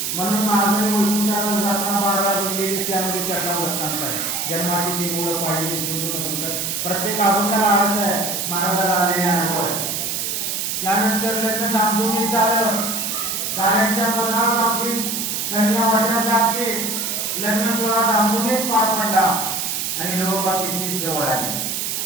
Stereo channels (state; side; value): noise; right; hiss, 2 dB below the sound